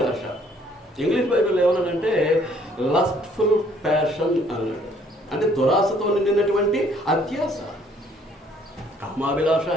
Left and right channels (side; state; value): both; normal; correlation 0.62